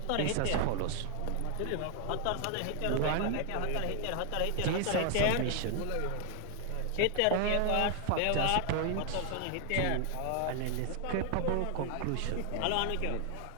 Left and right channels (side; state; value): both; different; correlation 0.00